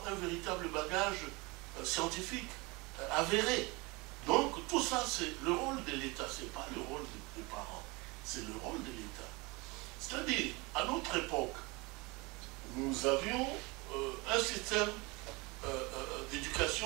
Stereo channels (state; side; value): quieter; left; 25.6 dB